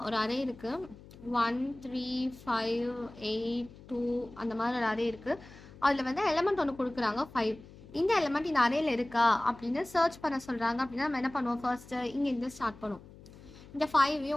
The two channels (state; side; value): noise; left; hum, 20 dB below the sound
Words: ஒரு அரே இருக்குது 1 3 5 8 2 அந்த மாதிரி ஒரு அரே இருக்குது. அதில் வந்து எலமெண்ட் ஒன்று கொடுக்குறாங்க 5. இந்த எலமெண்ட் இந்த அரேயில் இருக்கா அப்படின்னு சர்ச் பண்ண சொல்கிறாங்க. அப்படின்னா நம்ம என்ன பண்ணுவோம், ஃபர்ஸ்ட்டு இங்கேருந்து ஸ்டார்ட் பண்ணுவோம். இந்த